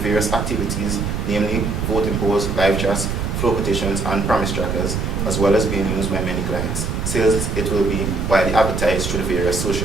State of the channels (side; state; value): right; noise; rumble, 2 dB below the sound